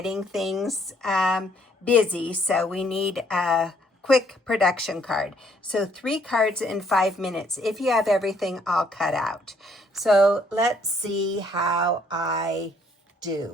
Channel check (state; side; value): normal; both; correlation 0.66